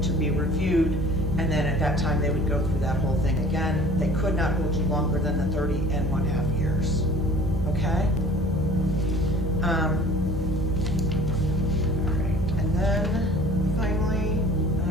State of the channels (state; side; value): normal; both; correlation 0.47